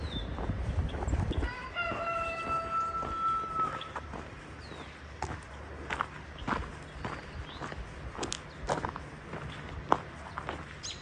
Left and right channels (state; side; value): identical; both; correlation 1.00